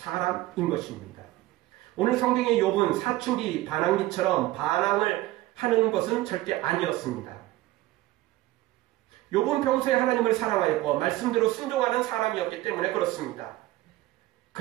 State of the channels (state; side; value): quieter; left; 17.1 dB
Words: 것입니다. 오늘 성경의 욥은 사춘기 반항기처럼 반항을 하는 것은 절대 아니었습니다. 욥은 평소에 하나님을 사랑하였고 말씀대로 순종하는 사람이었기 때문에 그렇습니다.